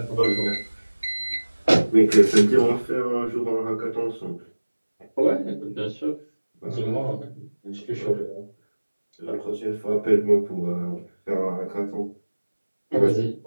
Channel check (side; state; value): both; inverted; correlation -1.00